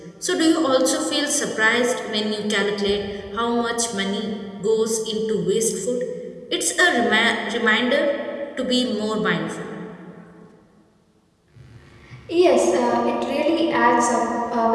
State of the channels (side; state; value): both; identical; correlation 1.00